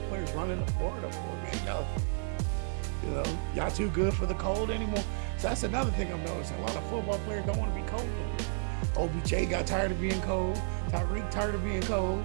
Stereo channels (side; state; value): left; silent; 57 dB below the other